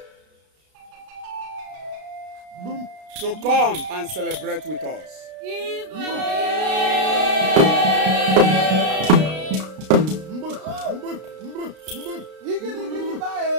to come and celebrate with us.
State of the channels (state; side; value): late; left; 33 ms